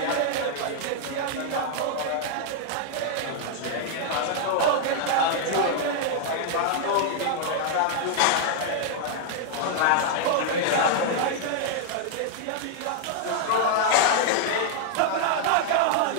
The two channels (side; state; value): both; different; correlation -0.01